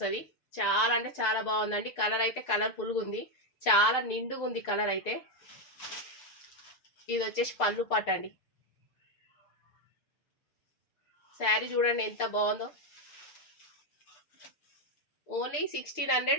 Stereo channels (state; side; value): late; right; 6.6 ms